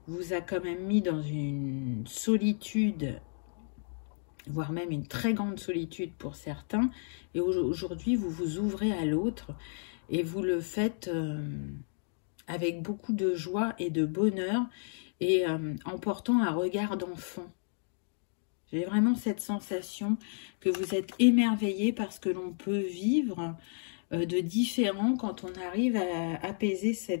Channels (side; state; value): right; silent; digital silence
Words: vous a quand même mis dans une solitude, voire même une très grande solitude pour certains. Et aujourd'hui, vous vous ouvrez à l'autre et vous le faites avec beaucoup de joie et de bonheur et en portant un regard d'enfant. J'ai vraiment cette sensation que vous êtes émerveillé parce que l'on peut vivre de différent quand on arrive à apaiser